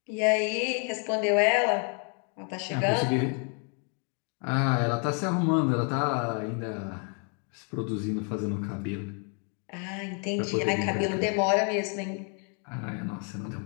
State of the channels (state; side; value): quieter; right; 39.8 dB